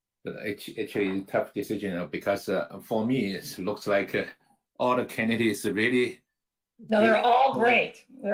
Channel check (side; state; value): both; identical; correlation 1.00